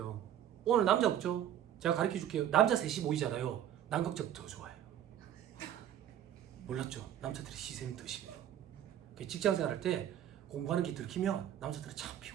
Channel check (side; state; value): left; quieter; 10.7 dB